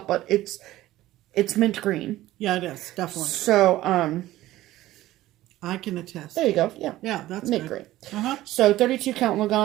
but it's mint green. Yeah, it is. Definitely. So, I can attest. there you go. Yeah. Yeah, that's mint good. green. Uh-huh. So 32 count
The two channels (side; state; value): left; quieter; 15.6 dB